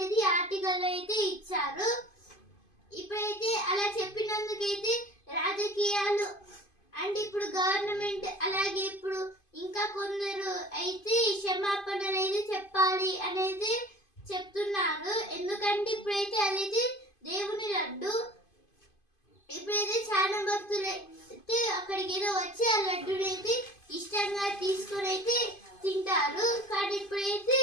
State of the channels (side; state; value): right; late; 2.5 ms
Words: అయితే ఆర్టికల్ అయితే ఇచ్చారు. ఇప్పుడైతే అలా చెప్పినందుకైతే రాజకీయాలు అంటే ఇప్పుడు గవర్నమెంట్ అలాగే ఇప్పుడు ఇంకా కొందరు అయితే క్షమాపణలు అయితే చెప్పాలి అనేది చెప్తున్నారు. ఎందుకంటే ఇప్పుడైతే అదైతే దేవుని లడ్డు. ఇప్పుడైతే చాలా భక్తులు అయితే అక్కడికి ఏదో వచ్చి ఆ లడ్డుని అయితే ఇష్టంగా తీసుకొని అయితే తింటారు. కానీ ఇప్పుడైతే